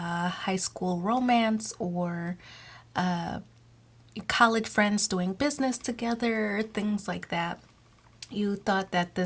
high school romance, or college friends doing business together, things like that. You thought that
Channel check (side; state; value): both; identical; correlation 1.00